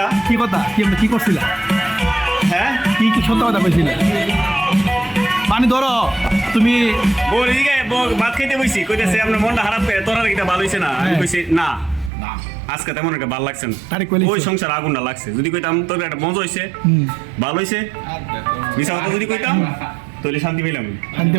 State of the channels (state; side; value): drops out; left; at 12.1 s